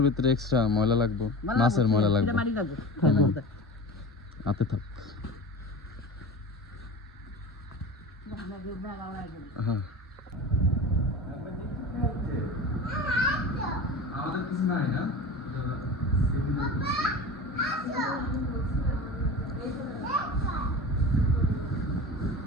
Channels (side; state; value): both; normal; correlation 0.33